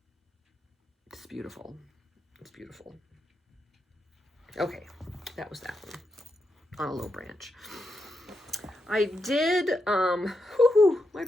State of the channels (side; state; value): both; normal; correlation 0.84